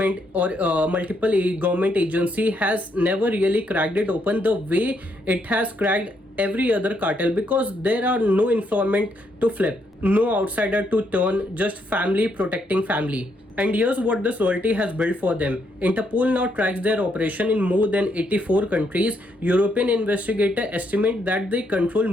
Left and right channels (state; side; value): normal; both; correlation 0.75